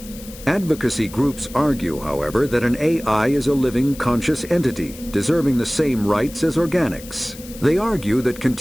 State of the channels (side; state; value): left; noise; hiss, 17 dB below the sound